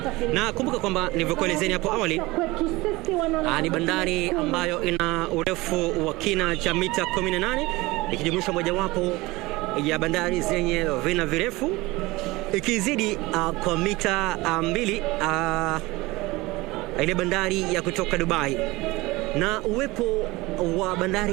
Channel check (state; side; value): quieter; left; 21.3 dB